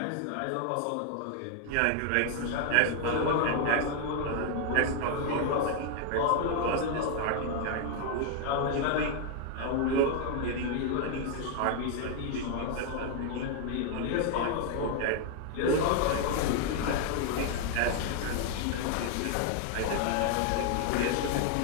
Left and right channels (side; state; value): both; different; correlation 0.00